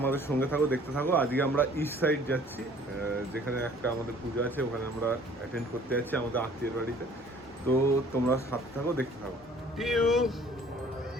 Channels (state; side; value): normal; both; correlation 0.54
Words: সঙ্গে থাকো, দেখতে থাকো। আজকে আমরা ইস্ট সাইড যাচ্ছি, যেখানে একটা আমাদের পুজো আছে, ওখানে আমরা অ্যাটেন্ড করতে যাচ্ছি আমাদের আত্মীয়ের বাড়িতে। তো তোমরা সাথে থাকো, দেখতে থাকো। টিউ